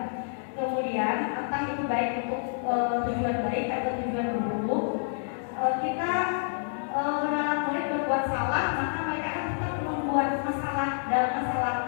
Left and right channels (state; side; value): silent; right; digital silence